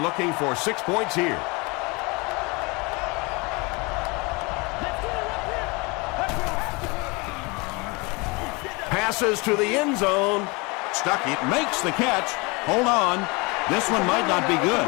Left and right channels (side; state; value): right; quieter; 27.2 dB